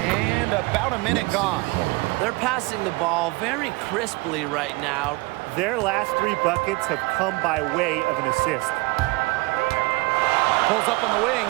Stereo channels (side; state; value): left; quieter; 24.3 dB